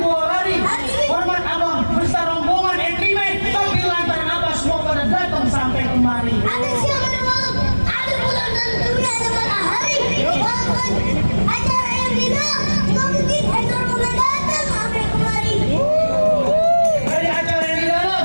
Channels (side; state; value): both; inverted; correlation -1.00